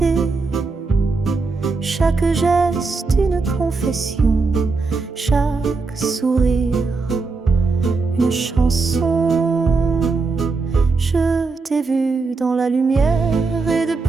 Chaque geste une confession, chaque sourire une chanson. Je t'ai vu dans la lumière et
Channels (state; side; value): quieter; left; 4.1 dB